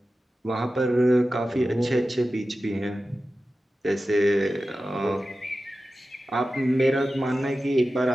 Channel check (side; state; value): both; normal; correlation 0.94